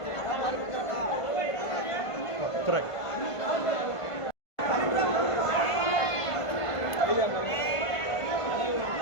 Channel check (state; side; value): late; right; 1.5 ms